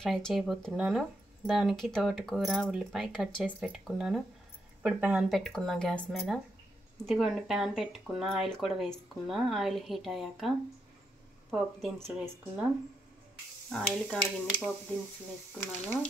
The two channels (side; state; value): both; normal; correlation 0.81